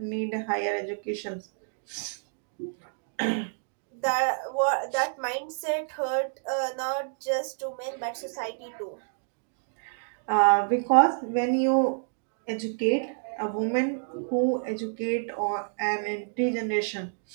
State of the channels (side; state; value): left; silent; digital silence